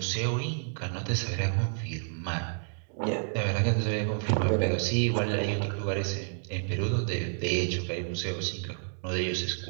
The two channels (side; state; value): left; silent; digital silence